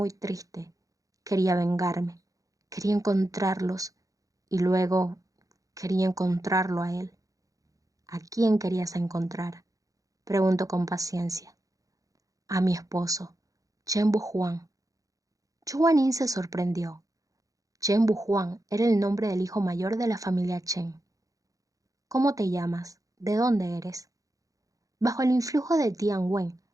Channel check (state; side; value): late; left; 0.17 ms